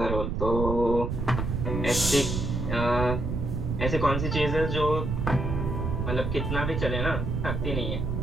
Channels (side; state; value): right; noise; rumble, 2 dB below the sound